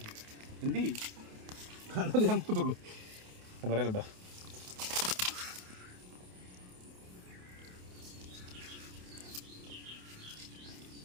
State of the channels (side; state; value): left; late; 28 ms